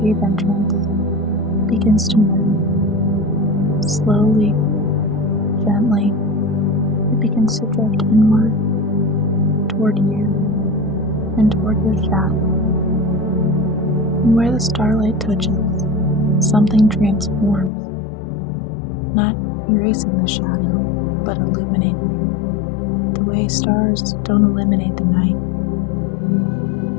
entrance begins to move. Slowly, gently, it begins to drift inward, toward you, and toward your shadow. And where the starlight touches, something transforms, not erasing the shadow, but illuminating it. The way stars don't eliminate the night,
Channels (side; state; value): right; drops out; at 17.7 s